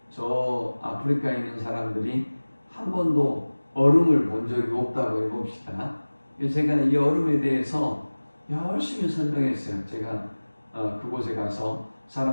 사람들이 한 번도 얼음을 본 적이 없다고 해봅시다. 제가 이 얼음에 대해서 열심히 설명했어요. 제가 그곳에 가서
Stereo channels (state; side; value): inverted; both; correlation -1.00